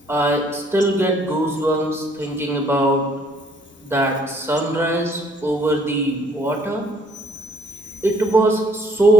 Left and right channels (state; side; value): normal; both; correlation 0.62